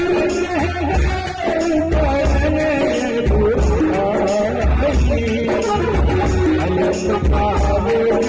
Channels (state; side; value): identical; both; correlation 1.00